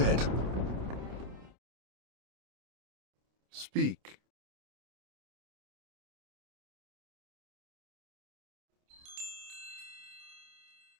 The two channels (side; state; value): left; late; 27 ms